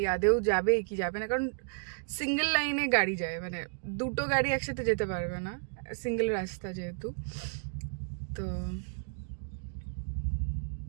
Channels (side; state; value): left; silent; digital silence